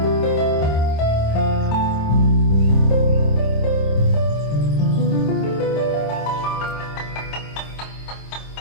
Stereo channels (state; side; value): late; right; 26 ms